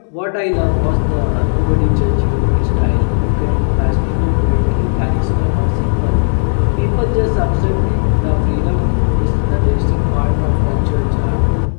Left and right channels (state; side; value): silent; right; digital silence